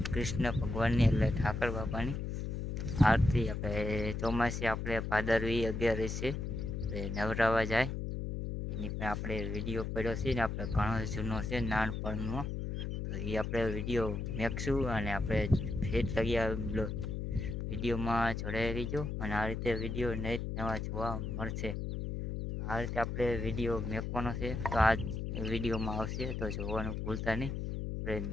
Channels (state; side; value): noise; left; hum, 3 dB below the sound